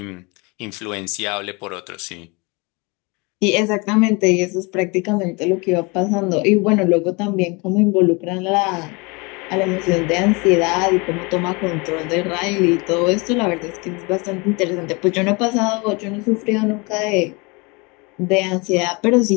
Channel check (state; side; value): quieter; right; 28.2 dB